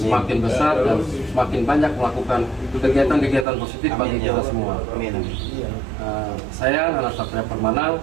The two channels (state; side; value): drops out; left; at 3.5 s